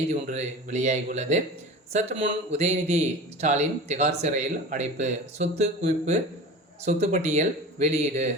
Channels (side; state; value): both; normal; correlation 0.34